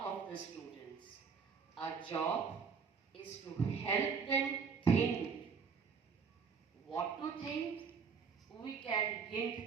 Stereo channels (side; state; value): left; quieter; 5.9 dB